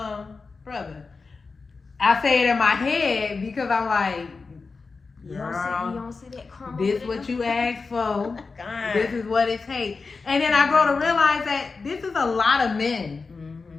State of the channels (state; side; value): quieter; right; 4.4 dB